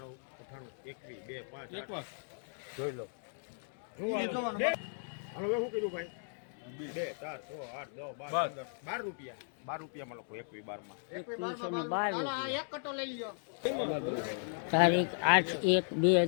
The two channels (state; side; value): silent; right; digital silence